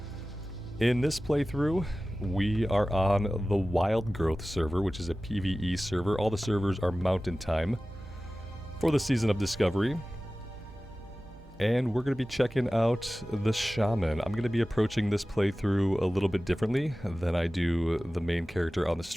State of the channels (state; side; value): normal; both; correlation 0.96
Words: In this playthrough, we are on the Wild Growth server, which is a PvE server. All the servers are Mountain Time for the Season of Discovery. And we're going to be checking out the Shaman. I'm going to be approaching this playthrough a little bit differently than I do the main character on the